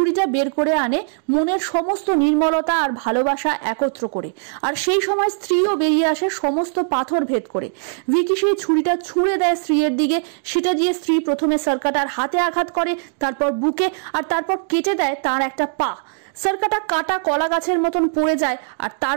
বের করে আনে, মনের সমস্ত নির্মলতা আর ভালোবাসা একত্র করে। আর সেই সময় স্ত্রীও বেরিয়ে আসে সমস্ত পাথর ভেদ করে। ভিকি সেই ছুরিটা ছুঁড়ে দেয় স্ত্রীর দিকে। সেটা দিয়ে স্ত্রী প্রথমে সার্কাটার হাতে আঘাত করে, তারপর বুকে, আর তারপর কেটে দেয় তার একটা পা। সার্কাটা কাটা কলা গাছের মতন পড়ে যায়, আর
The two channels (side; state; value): left; silent; 65 dB below the other